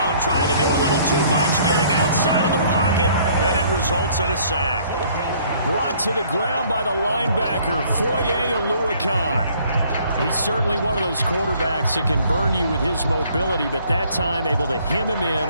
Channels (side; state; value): both; inverted; correlation -0.59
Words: trying to do a little too much, getting outside of the pocket, and it results in a sack. Brought to the ground by the linebacker, Foye Oluwakan. He's certainly one of those quarterbacks that can burn you with his mobility, but that time able to hem him